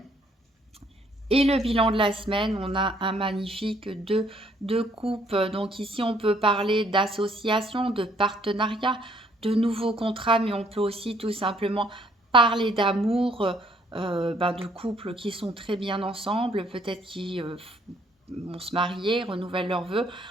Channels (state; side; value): normal; both; correlation 0.65